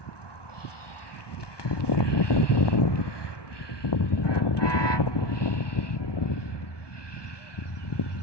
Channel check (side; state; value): right; late; 1.2 ms